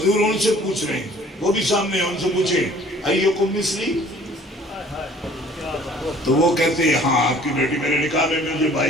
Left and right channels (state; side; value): normal; both; correlation 0.53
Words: ان سے پوچھ رہے ہیں، وہ بھی سامنے ہیں، ان سے پوچھیں ایکم مثلی. تو وہ کہتے ہیں ہاں آپ کی بیٹی میرے نکاح میں، مجھے